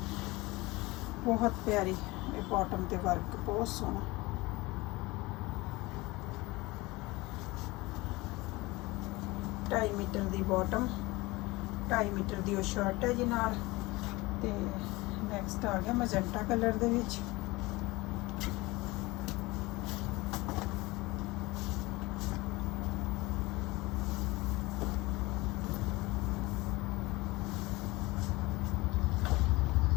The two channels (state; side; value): quieter; right; 21.9 dB